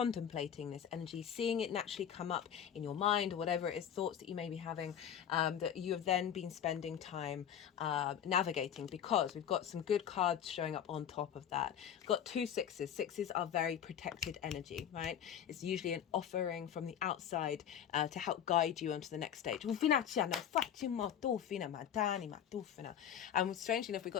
this energy, seeing it naturally come up in your mind, or whatever it is, thoughts that you may be having, that you have then been spending time navigating, because we've got some good cards showing up on top of that. We've got 2 sixes. Sixes are very protected energy, right? It's usually an offering from the outside to help guide you onto the next stage. And strangely enough, we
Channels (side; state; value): right; quieter; 9.3 dB